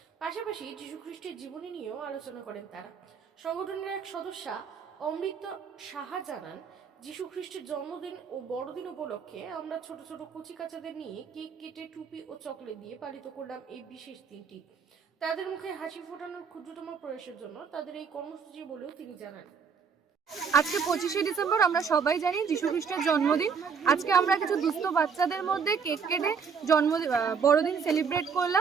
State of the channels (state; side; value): quieter; left; 6.1 dB